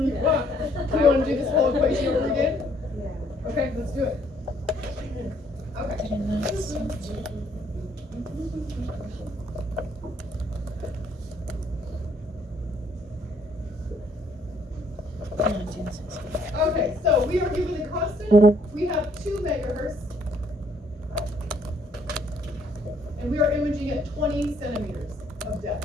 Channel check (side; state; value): both; normal; correlation 0.65